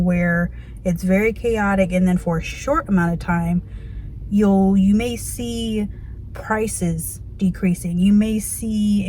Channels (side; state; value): both; identical; correlation 1.00